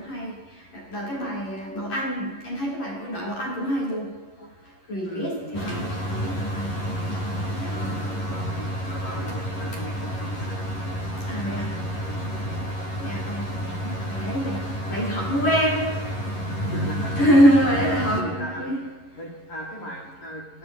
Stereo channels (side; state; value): right; late; 11 ms